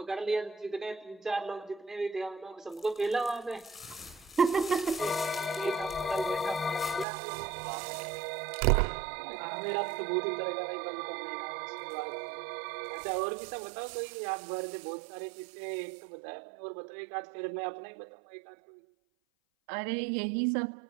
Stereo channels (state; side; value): drops out; left; at 7.1 s